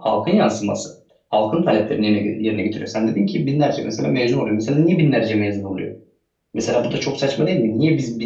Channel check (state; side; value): identical; both; correlation 1.00